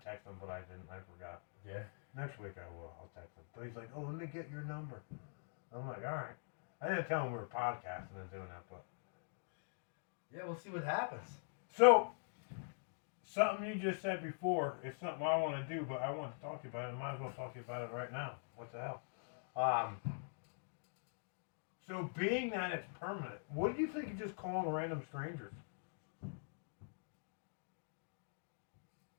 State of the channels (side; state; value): right; silent; digital silence